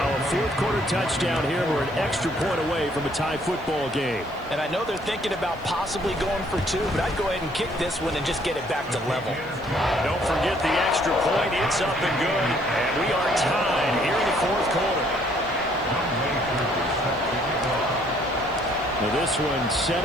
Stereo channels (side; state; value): right; noise; hiss, 28 dB below the sound